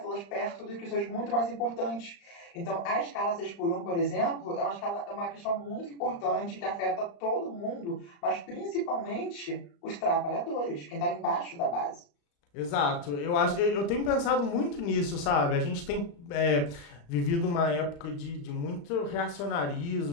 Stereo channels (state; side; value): late; right; 35 ms